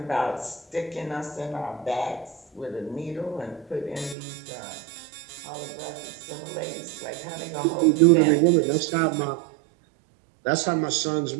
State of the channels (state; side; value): drops out; left; at 4.2 s